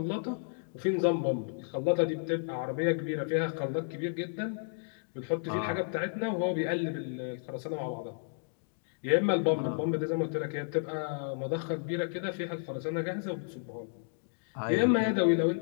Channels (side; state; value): right; silent; digital silence